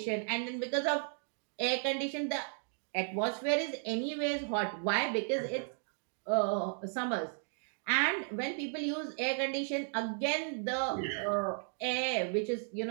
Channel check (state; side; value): silent; left; 55 dB below the other